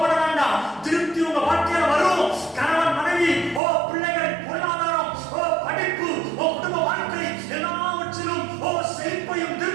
வேண்டாம். திருப்தி உங்க வாழ்க்கையில வரும். கணவன் மனைவி, பிள்ளைகள், பொருளாதாரம், படிப்பு, குடும்ப வாழ்க்கை, எல்லாவற்றிலும் செழிப்பையும்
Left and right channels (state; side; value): drops out; left; at 3.6 s